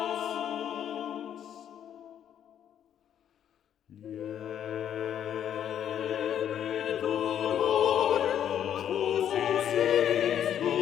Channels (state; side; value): quieter; right; 9.7 dB